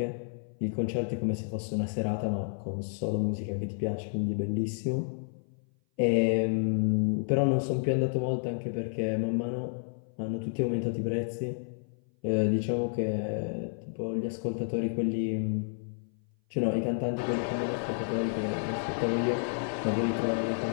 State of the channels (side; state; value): right; silent; 56 dB below the other